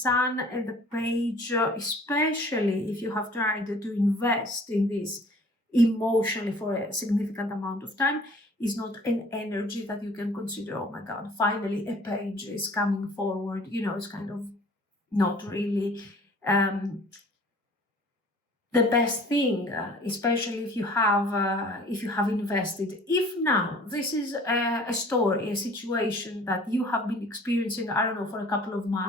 and the Page, especially if you have tried to invest in this emotionally for a significant amount of time, is not an energy that you can consider, oh my God, finally a page is coming forward. It's kind of not really the best thing, especially if you have invested. If now this is a story, a situation that you have been experiencing, I don't know, for a couple of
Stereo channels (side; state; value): both; normal; correlation 0.50